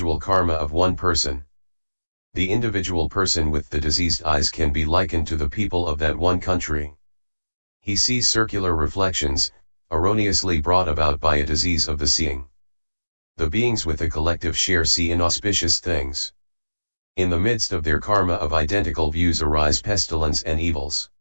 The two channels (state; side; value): inverted; both; correlation -1.00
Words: karma of one person. The individual person with the diseased eyes can be likened to the people of that one country. He sees circular reflections, erroneously brought about by a disease of the seeing. The beings with the collective share see inauspicious things. In the midst of their karma of identical views arise pestilence and evils.